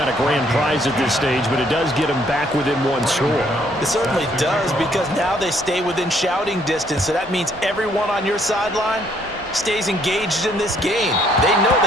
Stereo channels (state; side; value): normal; both; correlation 0.67